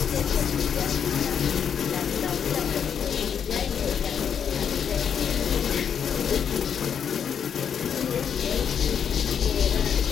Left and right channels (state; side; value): quieter; right; 7.8 dB